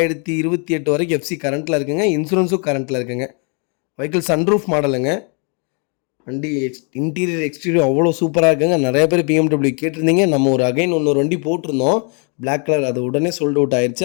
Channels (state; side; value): quieter; right; 37.1 dB